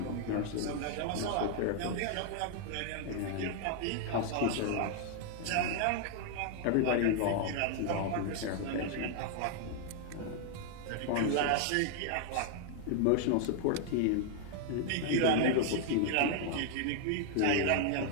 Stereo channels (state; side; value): different; both; correlation 0.00